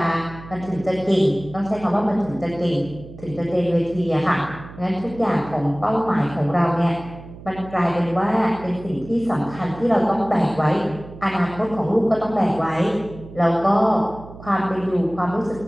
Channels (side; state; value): right; noise; hum, 16 dB below the sound